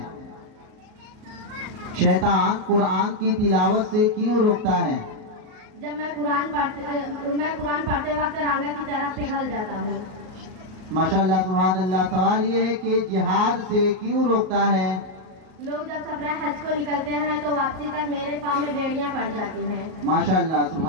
शैतान कुरान की तिलावत से क्यों रोकता है? जब मैं कुरान पढ़ते वक्त रांगा की तरफ पिघल जाता हूँ। माशाअल्लाह, सुभान अल्लाह। सवाल ये है कि जिहाद से क्यों रोकता है? लोग जब सफर हज को निकलते हैं तो वापसी तक मेरे पाँव में बेड़ियां पड़ जाती हैं। माशाअल्लाह,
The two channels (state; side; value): late; left; 38 ms